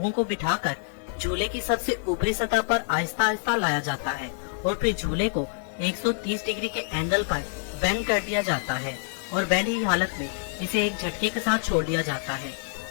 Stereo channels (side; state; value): right; silent; digital silence